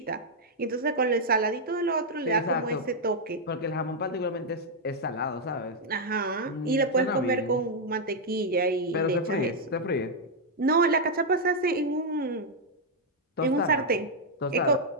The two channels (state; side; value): normal; both; correlation -0.02